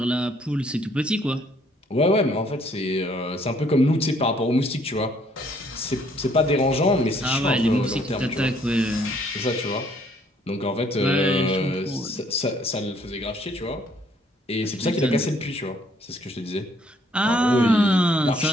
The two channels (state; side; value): normal; both; correlation 0.65